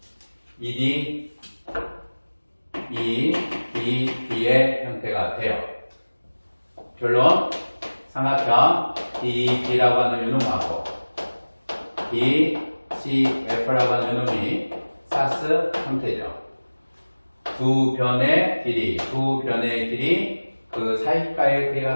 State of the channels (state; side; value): inverted; both; correlation -1.00